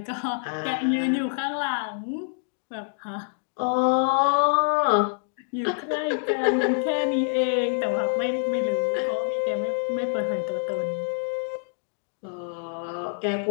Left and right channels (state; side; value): silent; right; digital silence